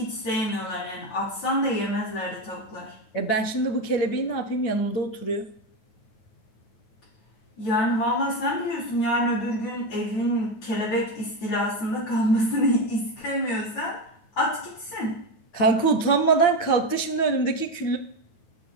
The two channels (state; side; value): late; right; 9.2 ms